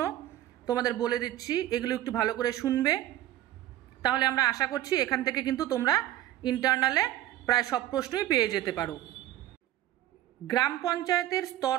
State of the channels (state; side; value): quieter; left; 13.9 dB